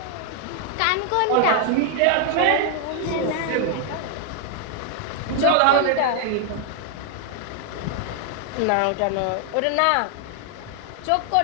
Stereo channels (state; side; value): different; both; correlation 0.00